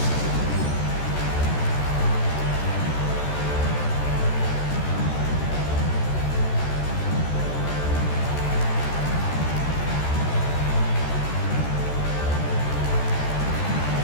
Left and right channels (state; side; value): late; right; 14 ms